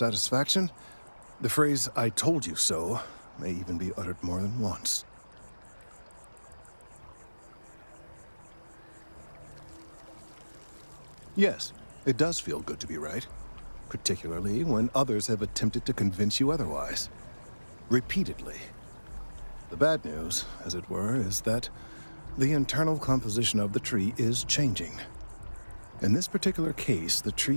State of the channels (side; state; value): both; inverted; correlation -1.00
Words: The phrase, "I told you so," may even be uttered more than once. Yes, it does feel good to be right, particularly when others have attempted to convince you otherwise. Repeatedly. The bad news, as it were, is that the internal composition of the tree is changing. In this particular case, the